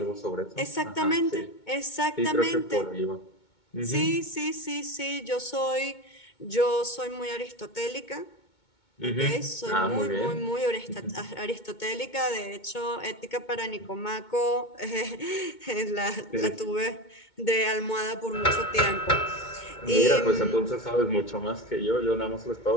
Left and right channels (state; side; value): late; right; 2.2 ms